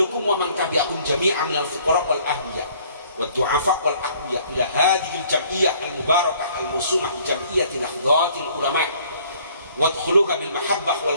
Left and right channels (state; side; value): inverted; both; correlation -0.58